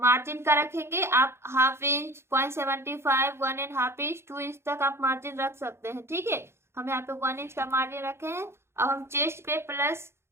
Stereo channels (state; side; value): late; left; 0.12 ms